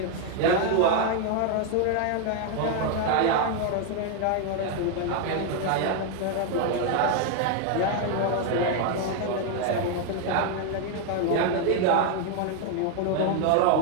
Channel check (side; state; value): both; different; correlation 0.00